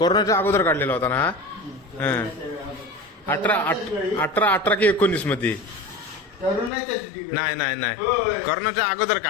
अगोदर काढलेला होता ना? 18 की 19 मध्ये? नाही कोरोनाच्या अगोदर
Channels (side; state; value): right; drops out; at 6.7 s